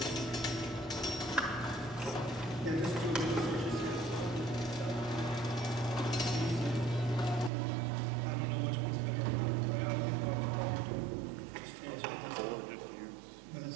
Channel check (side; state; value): left; drops out; at 7.5 s